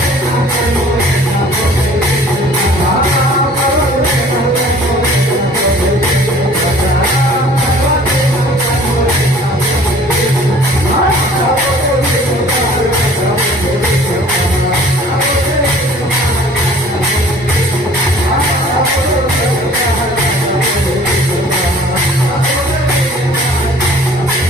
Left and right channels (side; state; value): both; normal; correlation 0.51